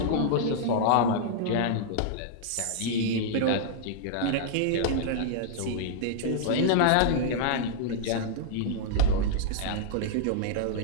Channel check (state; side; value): different; both; correlation -0.01